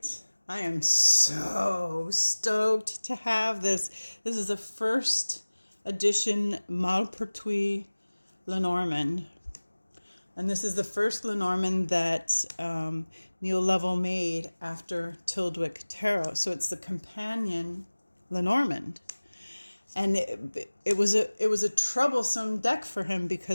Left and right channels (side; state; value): both; inverted; correlation -1.00